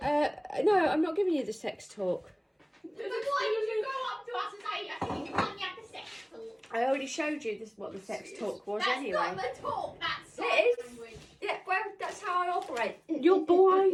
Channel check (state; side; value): identical; both; correlation 1.00